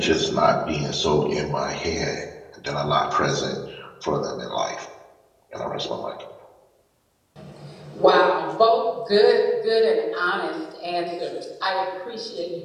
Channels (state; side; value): identical; both; correlation 1.00